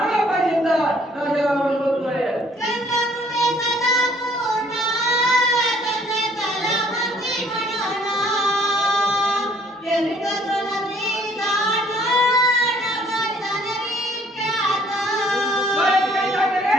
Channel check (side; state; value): both; normal; correlation 0.61